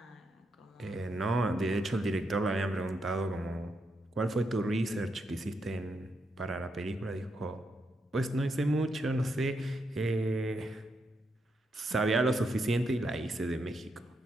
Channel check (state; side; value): normal; both; correlation 0.81